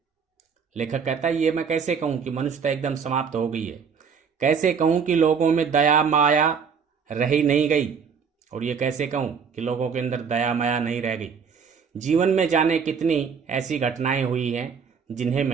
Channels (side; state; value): left; quieter; 6.3 dB